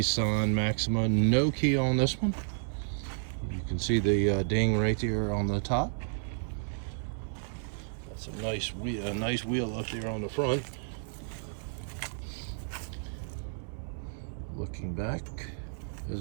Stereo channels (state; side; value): silent; left; 57 dB below the other